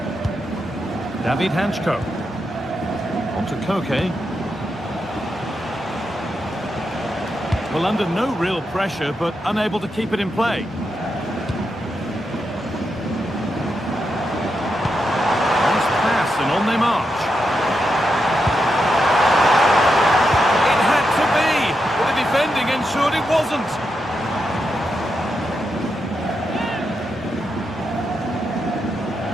David Hanchko. On to Koke. Well, under no real pressure, but unable to keep it in play. Nice pass, and on they march. It had to be, but the defending ensured it wasn't.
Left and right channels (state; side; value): normal; both; correlation 0.85